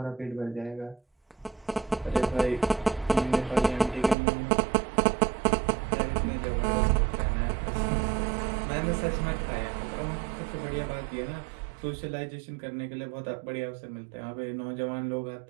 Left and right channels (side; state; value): left; drops out; at 4.2 s